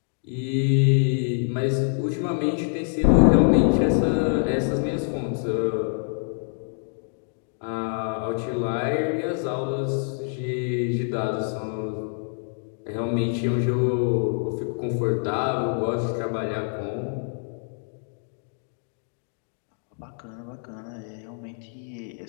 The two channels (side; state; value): right; silent; digital silence